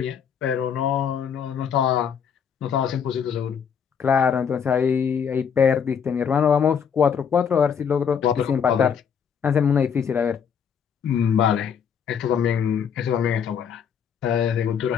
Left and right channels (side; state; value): right; quieter; 7.3 dB